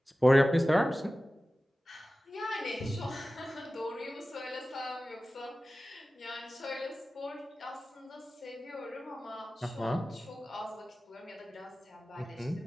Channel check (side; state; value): both; normal; correlation 0.96